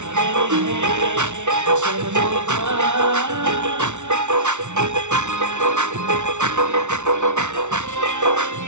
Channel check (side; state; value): left; late; 0.84 ms